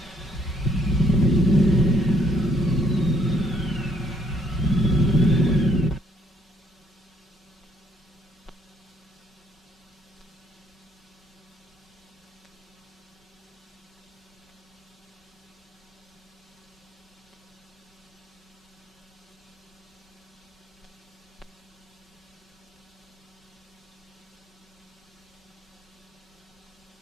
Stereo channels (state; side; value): normal; both; correlation 0.68